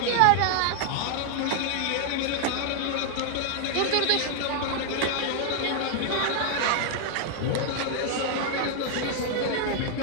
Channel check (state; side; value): different; both; correlation 0.00